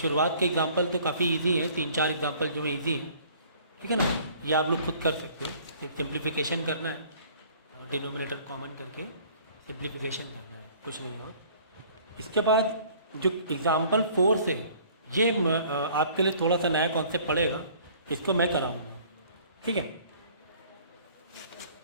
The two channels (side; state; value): both; inverted; correlation -0.53